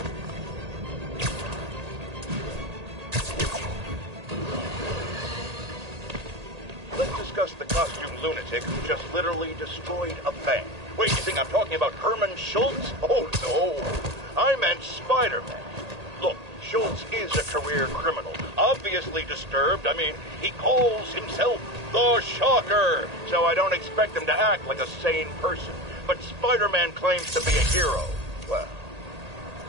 Let's discuss the costume lunatic who just literally destroyed a bank. Wait, you think I'm talking about Herman Schultz? Oh, no. I meant Spider-Man. Look, Schultz is a career criminal. Obviously disturbed. I mean, he calls himself the Shocker. So I don't expect him to act like a sane person. But Spider-Man claims to be a hero. Well,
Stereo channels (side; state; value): left; late; 1.8 ms